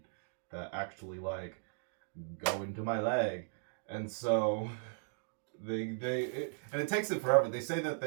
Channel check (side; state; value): left; silent; digital silence